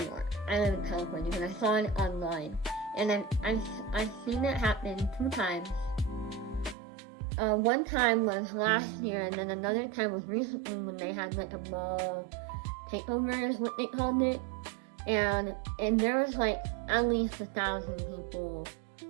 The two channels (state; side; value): drops out; left; at 6.8 s